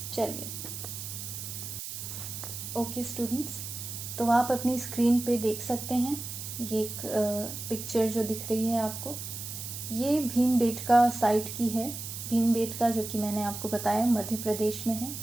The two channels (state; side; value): noise; right; hiss, 8 dB below the sound